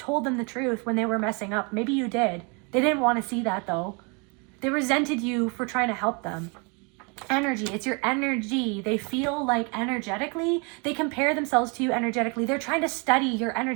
them the truth when they were messing up. Maybe you did. They didn't want to see that though. They resented you for trying to help them. Energy, it's your energy. They feel like energetically, they compare themselves to you energetically. They're trying to study your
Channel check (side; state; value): left; quieter; 32.8 dB